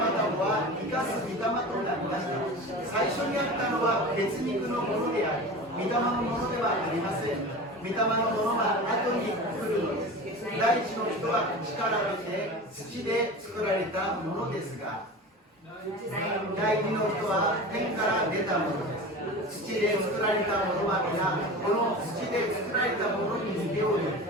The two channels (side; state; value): both; normal; correlation 0.33